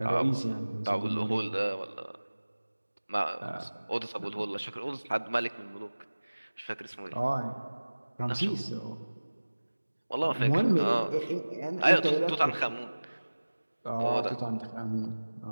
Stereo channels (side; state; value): both; inverted; correlation -1.00